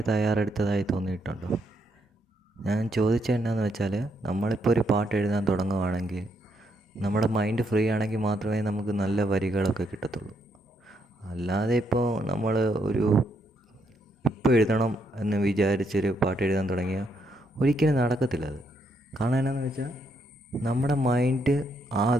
തയ്യാറെടുത്തതായി തോന്നിയിട്ടുണ്ടോ? ഞാൻ ചോദിച്ചത് എന്നാന്ന് വെച്ചാൽ, നമ്മളിപ്പോൾ ഒരു പാട്ട് എഴുതാൻ തുടങ്ങുകയാണെങ്കിൽ നമ്മുടെ മൈൻഡ് ഫ്രീ ആണെങ്കിൽ മാത്രമേ നമുക്ക് നല്ല വരികളൊക്കെ കിട്ടത്തുള്ളൂ. അല്ലാതെ ഇപ്പോൾ നമ്മൾ ഇപ്പോൾ എഴുതണം എന്ന് വിചാരിച്ചൊരു പാട്ട് എഴുതാൻ തുടങ്ങിയാൽ ഒരിക്കലും നടക്കത്തില്ല അത്. കാരണം എന്നാന്ന് വെച്ചാൽ, നമ്മുടെ മൈൻഡ്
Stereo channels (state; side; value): normal; both; correlation 0.76